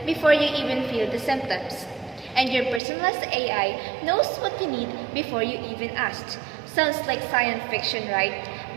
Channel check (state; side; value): drops out; left; at 2.8 s